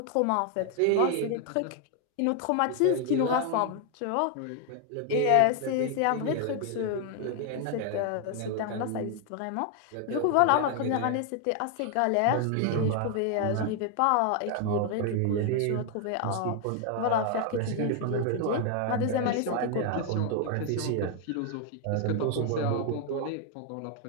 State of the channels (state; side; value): different; both; correlation 0.00